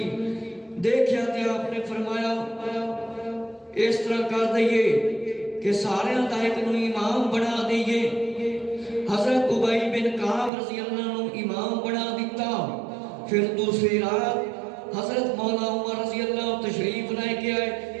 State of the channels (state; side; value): drops out; left; at 10.5 s